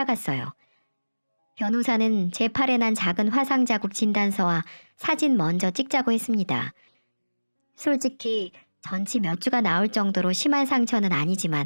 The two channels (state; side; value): inverted; both; correlation -1.00